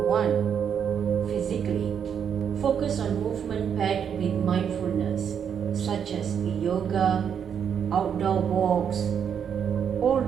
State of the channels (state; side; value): quieter; left; 7.9 dB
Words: one, physically. Focus on movement paired with mindfulness, such as yoga, outdoor walks, or